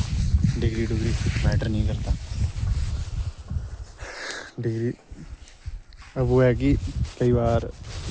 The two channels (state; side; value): identical; both; correlation 1.00